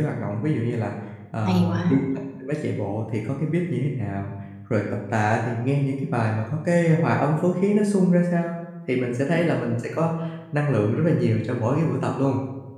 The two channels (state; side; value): identical; both; correlation 1.00